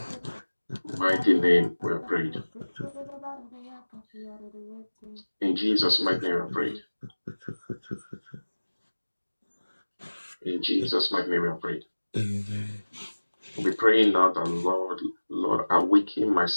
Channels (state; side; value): inverted; both; correlation -1.00